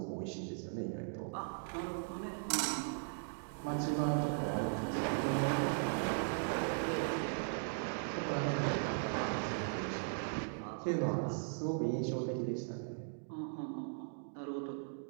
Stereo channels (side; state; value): left; silent; digital silence